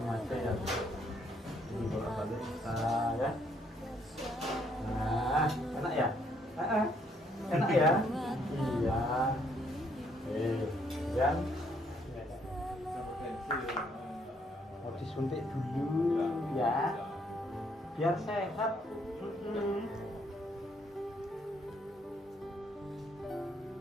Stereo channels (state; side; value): normal; both; correlation 0.69